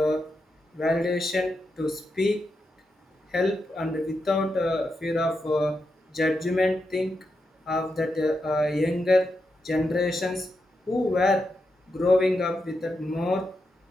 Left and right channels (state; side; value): normal; both; correlation 0.86